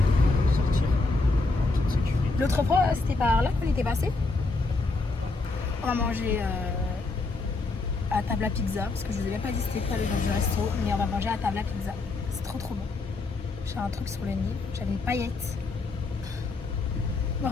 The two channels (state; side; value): quieter; right; 3.5 dB